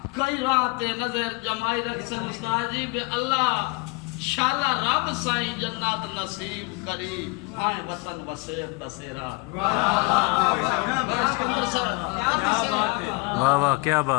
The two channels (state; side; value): quieter; right; 27.4 dB